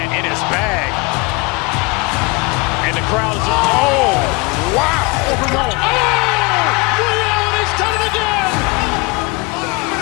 in his bag. And the crowd's, oh, wow. Liddell has done it again.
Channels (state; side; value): quieter; right; 26.8 dB